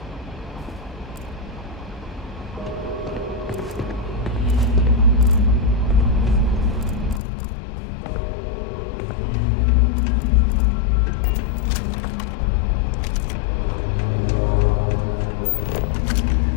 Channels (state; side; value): drops out; right; at 7.2 s